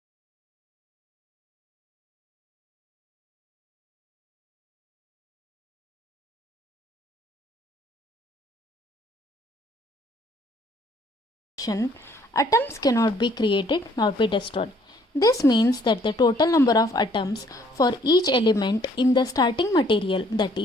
Atoms cannot be created nor be destroyed. This means that the total number of atoms for each element in the starting material, that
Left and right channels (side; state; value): both; normal; correlation 0.62